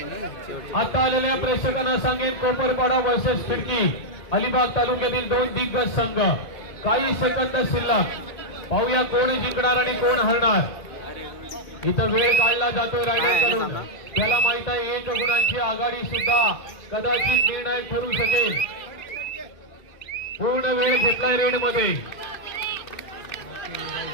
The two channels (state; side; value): late; right; 2.1 ms